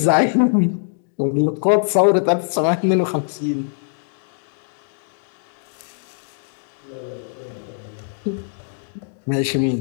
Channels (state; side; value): silent; right; digital silence